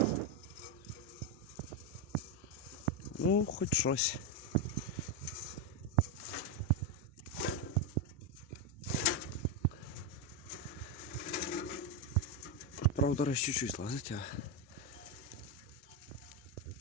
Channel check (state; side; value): normal; both; correlation 0.07